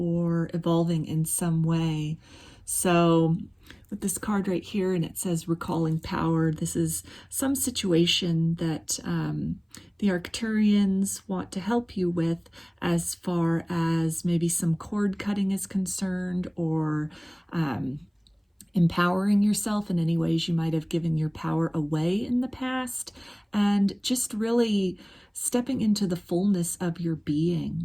evolving in some way. So with this card right here, and it says recalling power, this is some situation that the Arcturians want to help you with as far as maybe some cord cutting is concerned, or empowering yourself in any ways you might have given your power away in the past, and just really stepping into the fullness of your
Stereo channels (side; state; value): both; identical; correlation 1.00